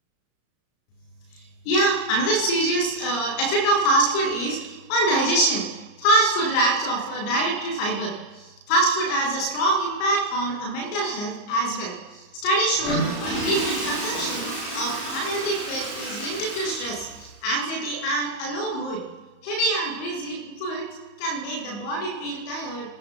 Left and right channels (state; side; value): late; right; 34 ms